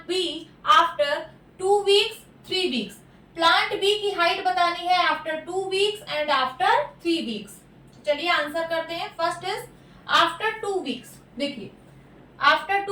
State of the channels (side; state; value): both; identical; correlation 1.00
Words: B after 2 weeks 3 weeks. Plant B की हाइट बतानी है after 2 weeks and after 3 weeks. चलिए आंसर करते हैं। First is after 2 weeks. देखिए after